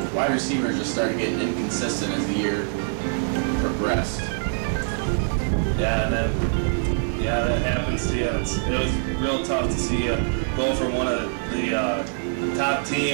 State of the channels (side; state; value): left; silent; digital silence